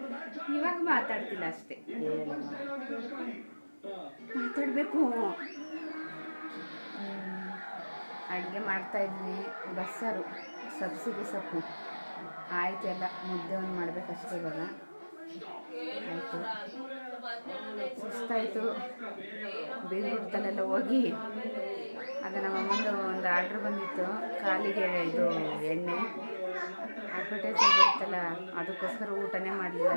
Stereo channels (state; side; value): inverted; both; correlation -1.00